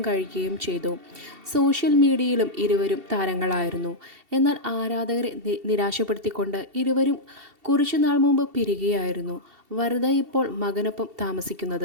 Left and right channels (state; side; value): late; left; 2.7 ms